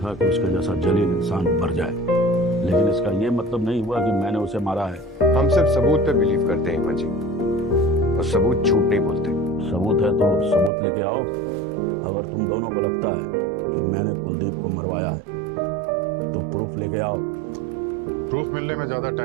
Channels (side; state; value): left; drops out; at 10.7 s